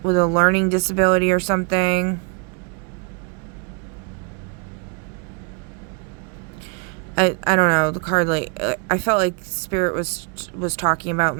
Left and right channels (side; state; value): left; quieter; 34.4 dB